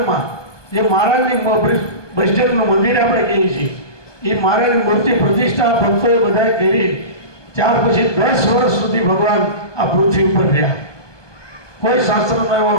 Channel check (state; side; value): late; right; 1.2 ms